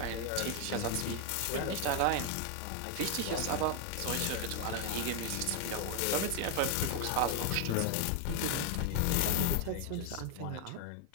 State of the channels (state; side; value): different; both; correlation 0.01